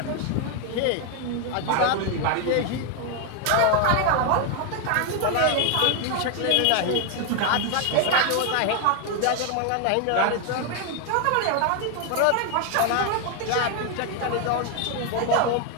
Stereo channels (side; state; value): both; different; correlation 0.01